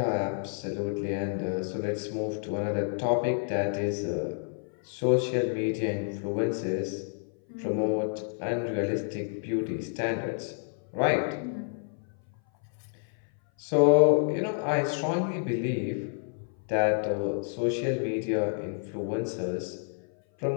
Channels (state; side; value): silent; right; 57 dB below the other